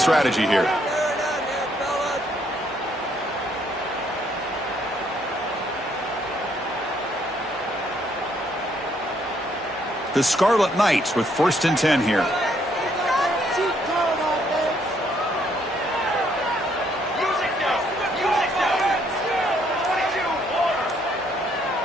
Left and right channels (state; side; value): normal; both; correlation 0.69